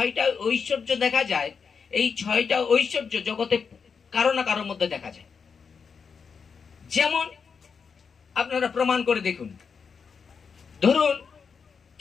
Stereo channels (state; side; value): quieter; right; 5.9 dB